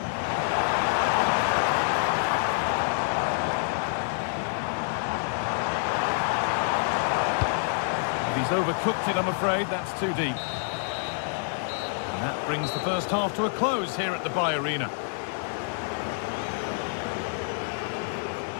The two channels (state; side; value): silent; right; 60 dB below the other